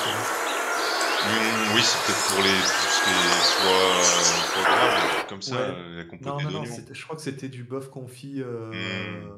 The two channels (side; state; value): both; identical; correlation 1.00